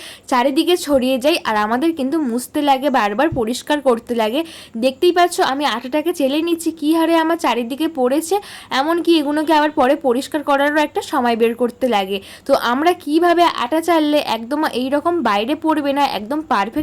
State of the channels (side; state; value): both; identical; correlation 1.00